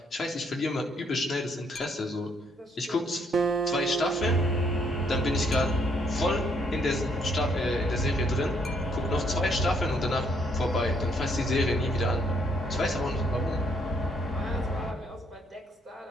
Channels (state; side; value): normal; both; correlation 0.70